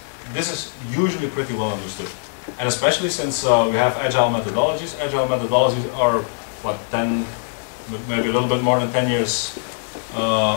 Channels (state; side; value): silent; right; digital silence